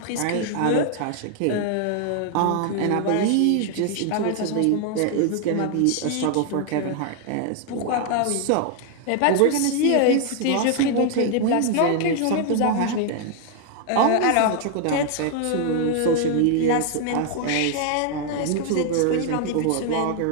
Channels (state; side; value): different; both; correlation 0.00